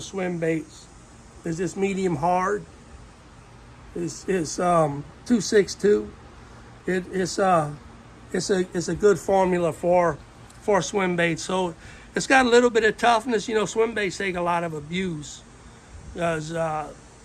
swim baits, is this medium hard. It's 262. It's a good formula for swim baits. So it's got a little bit of toughness. You know, swim baits take a lot of abuse. Because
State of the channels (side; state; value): both; identical; correlation 1.00